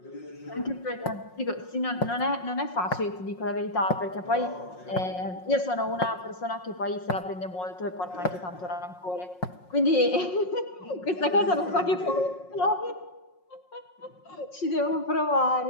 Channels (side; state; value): right; late; 5.5 ms